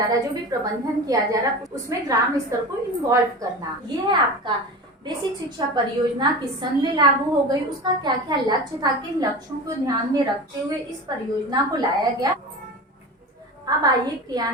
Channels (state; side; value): normal; both; correlation 0.30